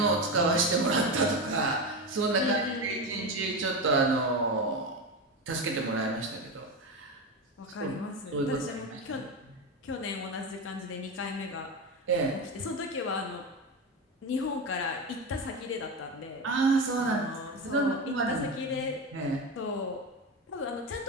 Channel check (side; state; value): both; normal; correlation 0.18